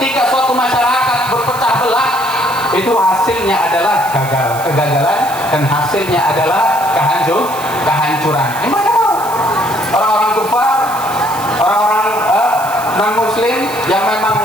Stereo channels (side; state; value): right; noise; hiss, 14 dB below the sound